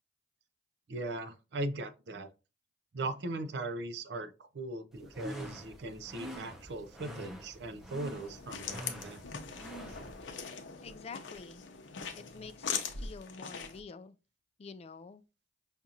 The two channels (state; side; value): normal; both; correlation 0.26